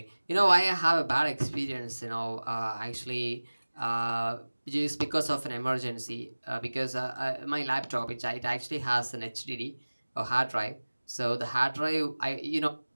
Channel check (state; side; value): inverted; both; correlation -1.00